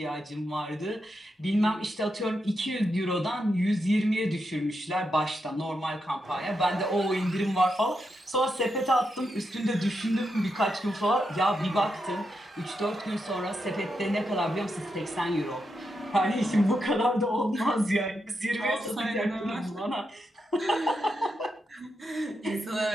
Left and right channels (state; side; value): normal; both; correlation 0.85